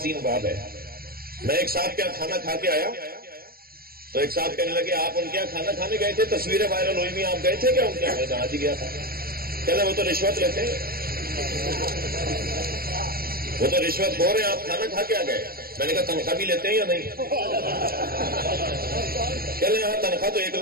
باب ہے. میں ایک صاحب کے یہاں کھانا کھا کے آیا تو ایک صاحب کہنے لگے آپ ان کے یہاں کھانا کھانے گئے تھے، تصویریں وائرل ہوئی بھی، آپ گئے تھے کیا ان کے یہاں؟ آج ہی گیا تھا. کہنے وہ تو رشوت لیتے ہیں، وہ تو رشوت بول رہے ہیں، آپ کھانا کھا کے آ گئے. میں نے کہا تنخواہ بھی لیتے ہیں یا نہیں؟ کہنے ہاں تنخواہ تو 1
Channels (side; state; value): left; late; 0.44 ms